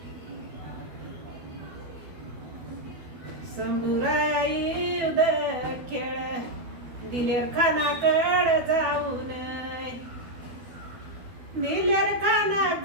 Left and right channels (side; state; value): left; late; 12 ms